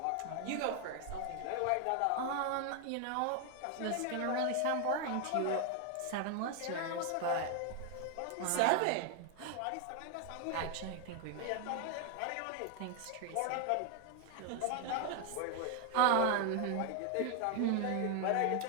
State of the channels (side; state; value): both; different; correlation 0.00